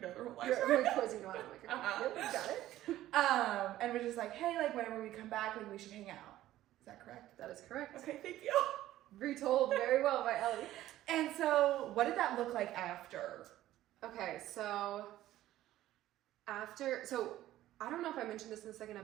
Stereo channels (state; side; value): quieter; left; 14.2 dB